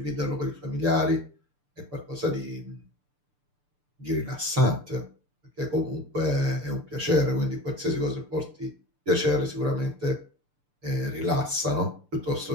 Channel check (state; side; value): late; left; 6.8 ms